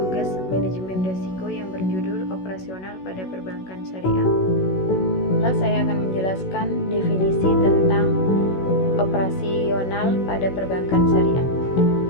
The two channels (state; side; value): late; right; 16 ms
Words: manajemen risiko yang berjudul operasional pada perbankan syariah. Lalu saya akan menjelaskan definisi tentang operasional pada perbankan syariah.